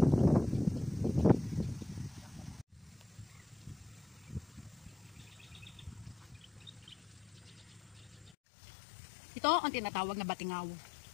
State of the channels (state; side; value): drops out; right; at 8.3 s